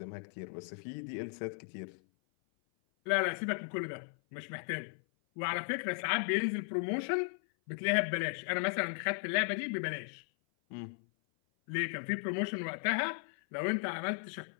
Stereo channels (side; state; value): right; silent; 54 dB below the other